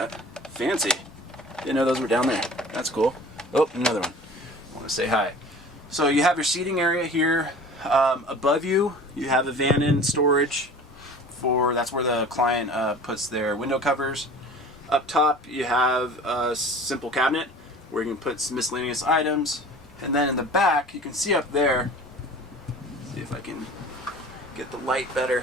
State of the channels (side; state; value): both; normal; correlation 0.42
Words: Fancy. Didn't know those were down there. That's cool. Oh, another one. I want to say hi. So you have your seating area here. Above you, you have a Vannon storage that's where the client puts their window covers. Up top, you have a simple cabinet where you can put some miscellaneous items. And then in the back, you can see up there, see if I can get the light